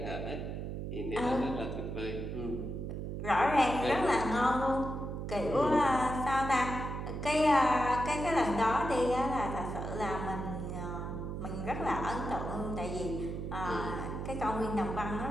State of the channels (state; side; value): noise; right; hum, 5 dB below the sound